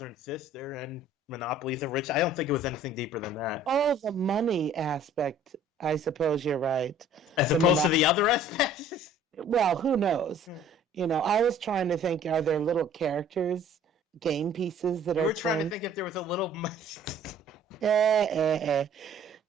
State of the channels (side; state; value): both; normal; correlation 0.53